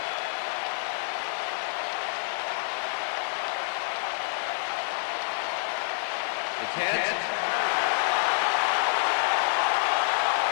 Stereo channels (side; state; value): right; silent; digital silence